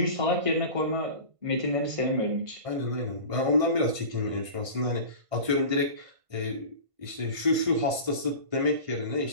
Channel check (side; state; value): left; late; 1.5 ms